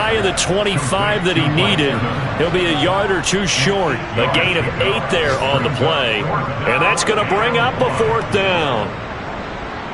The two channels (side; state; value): both; identical; correlation 1.00